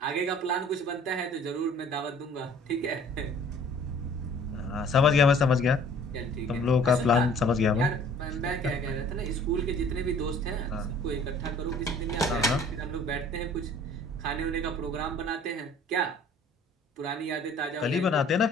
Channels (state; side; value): normal; both; correlation 0.52